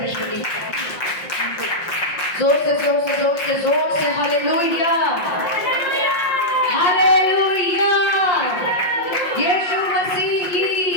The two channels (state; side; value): late; right; 5.6 ms